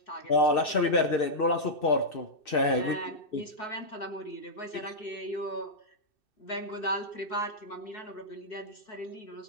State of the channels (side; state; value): right; late; 2.6 ms